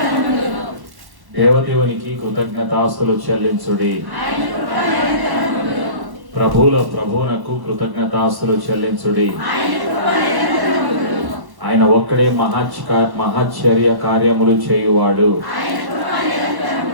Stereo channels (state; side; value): late; left; 1.1 ms